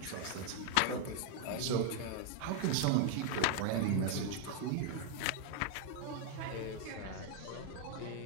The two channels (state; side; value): different; both; correlation 0.00